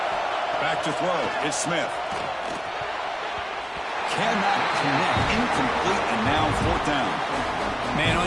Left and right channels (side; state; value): both; identical; correlation 1.00